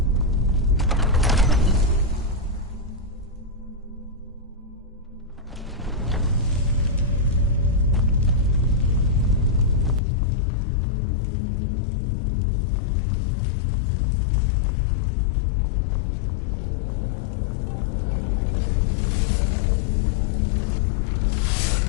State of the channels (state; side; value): drops out; right; at 10.0 s